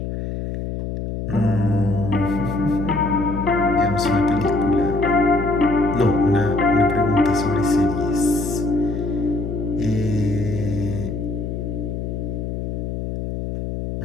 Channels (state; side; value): noise; left; hum, 5 dB below the sound